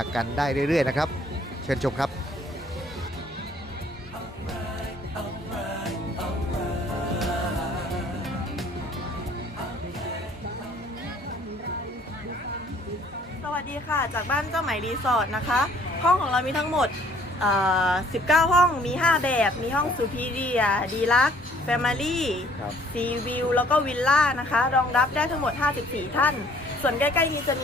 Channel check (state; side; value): normal; both; correlation 0.58